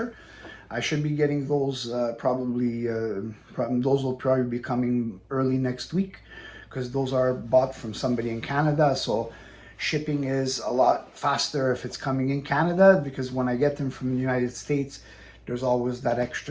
I should be getting those those will probably be coming early next week because those are bought from somebody in Canada. So shipping is a lot faster if it's coming in Canada, because when I get them from the United States, there's always that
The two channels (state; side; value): identical; both; correlation 1.00